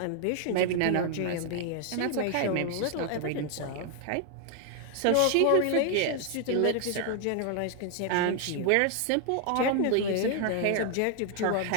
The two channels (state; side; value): different; both; correlation 0.00